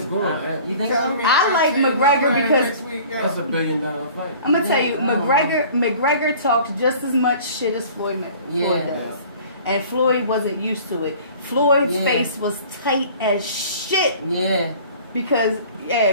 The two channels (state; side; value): inverted; both; correlation -0.47